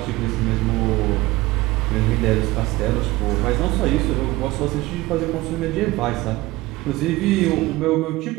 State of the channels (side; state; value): left; quieter; 19.4 dB